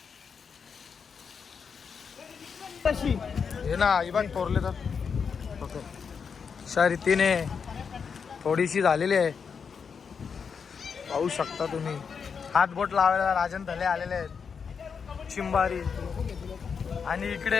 हे ना ही बाग तोरले तर अशा रीतीने थोडीशी झालेली आहे. पाहू शकता तुम्ही. हात बोट लावायला राजन थले आलेले आहेत. चिंबारी आणि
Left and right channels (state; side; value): quieter; right; 6.2 dB